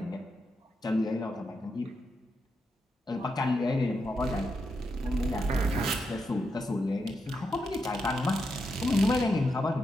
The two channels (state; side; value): normal; both; correlation 0.84